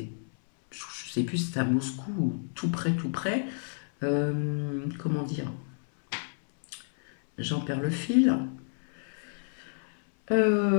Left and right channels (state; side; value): silent; right; 58 dB below the other